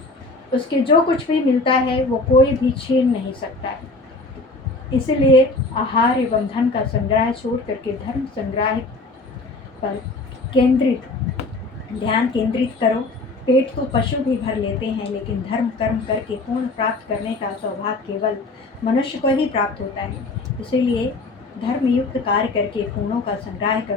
उसके जो कुछ भी मिलता है वो कोई भी छीन नहीं सकता है। इसलिए आहार एवं धन का संग्रह छोड़ करके धर्म संग्रह पर ध्यान केंद्रित करो। पेट तो पशु भी भर लेते हैं, लेकिन धर्म कर्म करके पूर्ण प्राप्त करने का सौभाग्य केवल मनुष्य को ही प्राप्त होता है। इसीलिए धर्मयुक्त कार्य करके पूर्णों का संग्रह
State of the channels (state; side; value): quieter; right; 3.3 dB